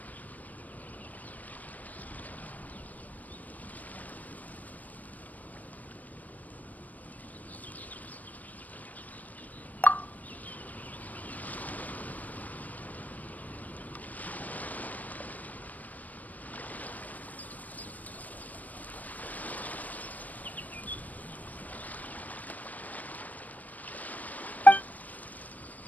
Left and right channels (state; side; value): late; right; 0.077 ms